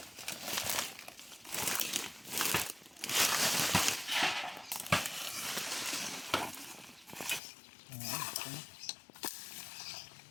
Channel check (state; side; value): drops out; right; at 7.4 s